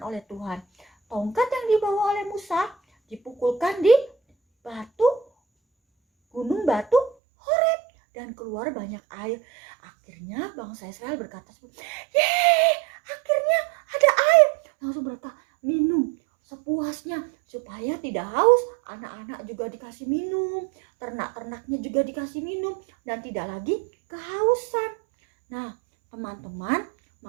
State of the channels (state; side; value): drops out; left; at 7.2 s